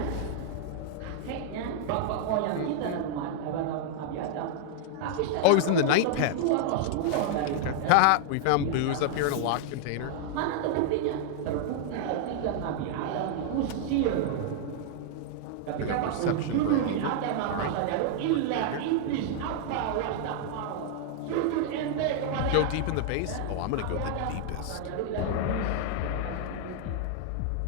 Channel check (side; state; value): both; different; correlation -0.01